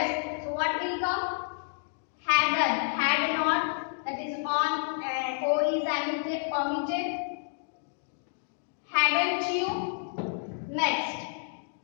So what will come? Hadn't. Had not. That is on. O is omitted. Hadn't you? Next.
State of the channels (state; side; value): silent; right; digital silence